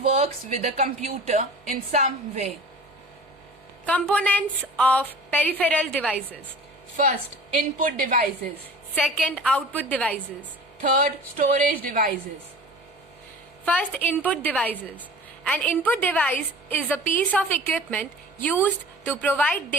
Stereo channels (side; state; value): both; normal; correlation 0.41